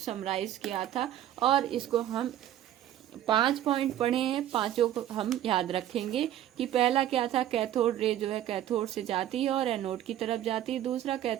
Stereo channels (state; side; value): quieter; left; 12.0 dB